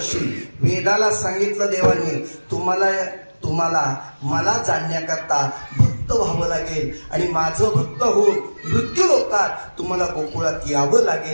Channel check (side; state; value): both; inverted; correlation -1.00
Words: वेदाला सांगितलं देवाने, तुम्हाला मला जाणण्याकरता भक्त व्हावं लागेल आणि माझं भक्त होऊन मृत्यू लोकात तुम्हाला गोकुळात यावं